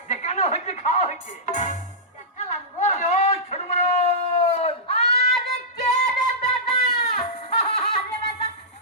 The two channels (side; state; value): both; normal; correlation -0.15